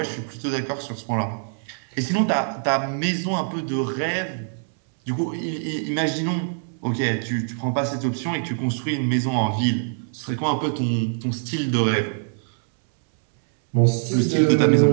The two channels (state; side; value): silent; left; 63 dB below the other